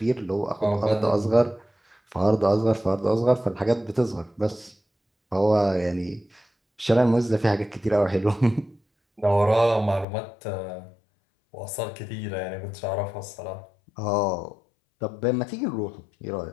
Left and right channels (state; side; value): drops out; right; at 10.1 s